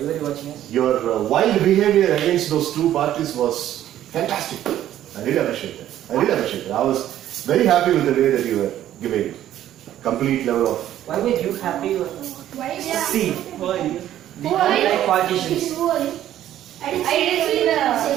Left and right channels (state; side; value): quieter; left; 12.2 dB